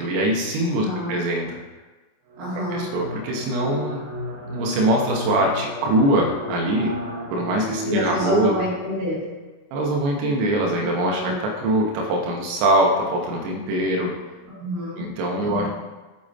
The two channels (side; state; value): left; late; 28 ms